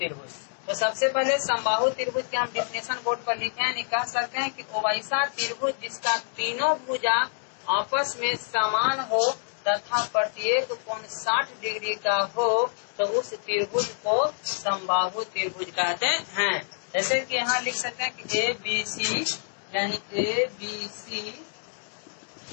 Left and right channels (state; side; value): silent; right; digital silence